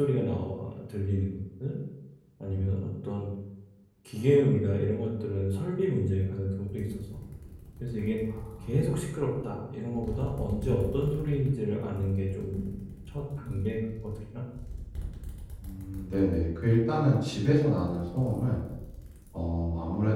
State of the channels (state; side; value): identical; both; correlation 1.00